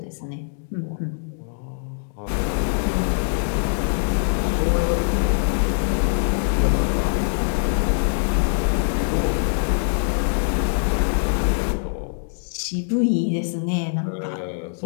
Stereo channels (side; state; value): right; silent; digital silence